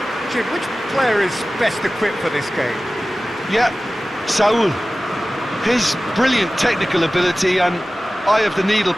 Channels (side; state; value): both; normal; correlation 0.97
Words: Jim, which player is best equipped for this game? Yeah, Saul. His brilliant technical ability and eye of the needle